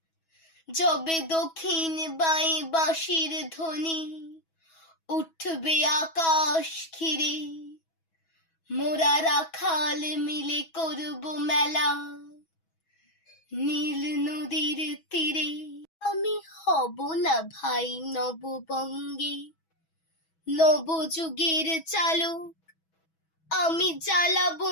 যবে দক্ষিণ বাই বাঁশির ধ্বনি উঠবে আকাশ ঘিরে, মোরা রাখাল মিলে করব মেলা নীল নদীর তীরে। আমি হব না ভাই নববঙ্গে নবযুগের চালক, আমি জ্বালাবো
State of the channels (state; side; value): late; right; 6.2 ms